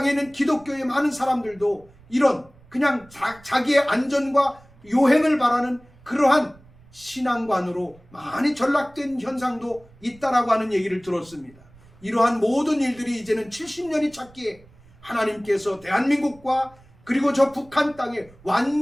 있는 기독교의 많은 사람들도 이런 그냥 자기의 안전과 요행을 바라는 그러한 신앙관으로 많이 전락된 현상도 있다라고 하는 얘기를 들었습니다. 이러한 모든 일들이 이제는 70년이 찼기에 하나님께서 대한민국과 그리고 저 북한 땅에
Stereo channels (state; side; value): noise; right; rumble, 26 dB below the sound